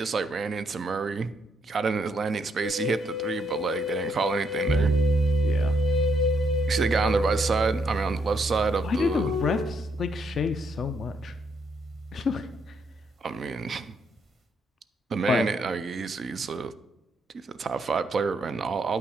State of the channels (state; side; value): normal; both; correlation 0.75